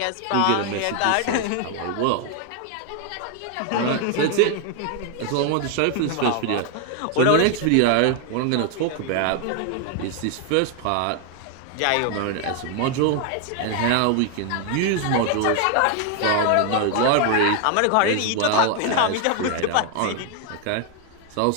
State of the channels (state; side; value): different; both; correlation 0.00